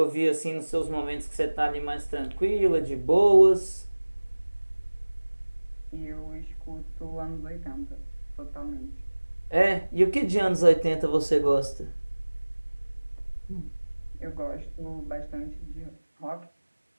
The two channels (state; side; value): inverted; both; correlation -1.00